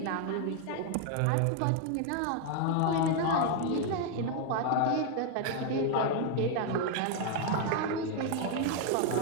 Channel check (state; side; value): different; both; correlation 0.00